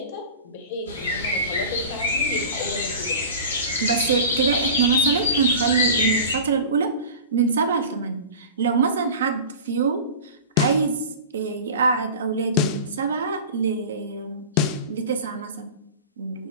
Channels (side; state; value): both; inverted; correlation -0.35